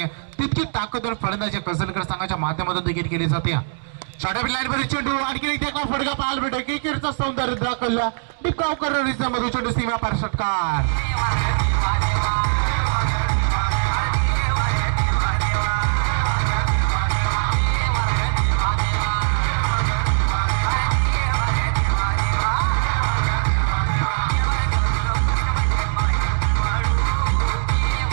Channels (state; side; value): silent; left; digital silence